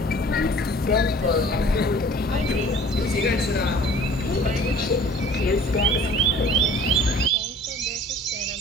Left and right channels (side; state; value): both; normal; correlation 0.49